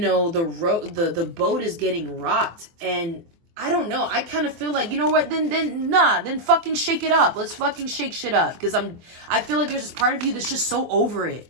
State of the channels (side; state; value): left; late; 24 ms